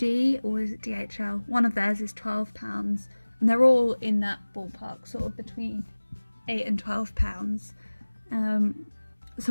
or is it DHL? One of theirs is £12, and they're all in that ballpark, sort of between £8 and £12.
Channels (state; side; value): inverted; both; correlation -1.00